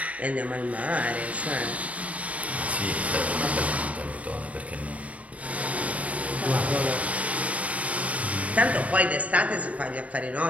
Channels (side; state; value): left; late; 0.068 ms